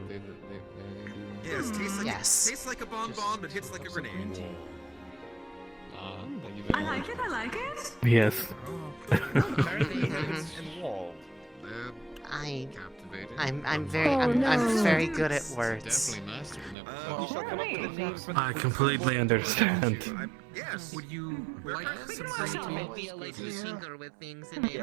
Yes, yes. tastes like a bonbon, but hits like a grenade. I like it. Yes. I'm very good at words. I completely understand. Yes. Would you like some green tea? Like you tinker with things in a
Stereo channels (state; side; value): drops out; left; at 16.8 s